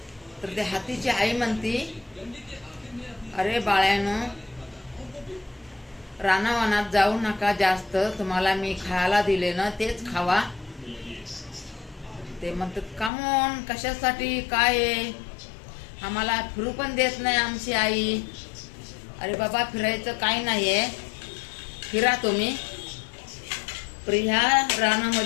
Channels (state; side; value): drops out; right; at 13.1 s